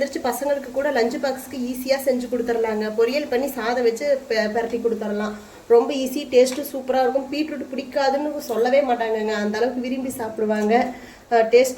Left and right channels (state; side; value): identical; both; correlation 1.00